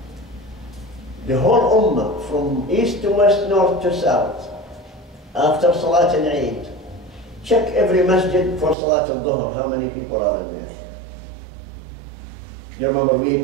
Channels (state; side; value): drops out; left; at 8.8 s